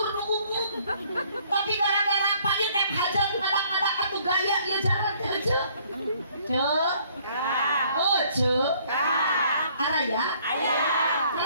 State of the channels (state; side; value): inverted; both; correlation -0.62